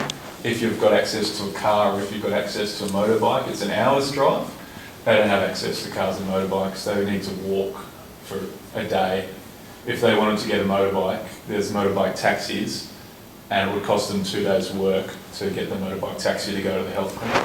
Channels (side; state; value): both; identical; correlation 1.00